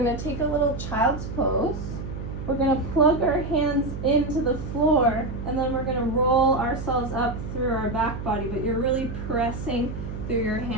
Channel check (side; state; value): right; noise; hum, 7 dB below the sound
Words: take a little child's pose. We're gonna plug our hands into the floor, and then we're gonna roll ourselves up through our back body, but you're really pressing through your